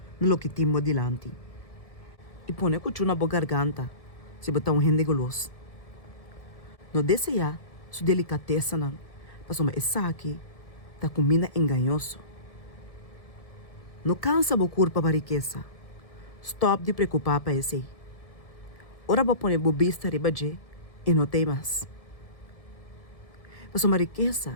no lo que timo dilante. E põe cuchu na boa garganta, se botar rende goloso. No desejar sua delicateza não, para uma essa aqui, tá comida enganhoso. No cansa bo curpa para riqueza, stop de preocupar para esse. Ora bo põe bobista ribaje e não tem mais. Para uma riqueza,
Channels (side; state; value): right; late; 1.7 ms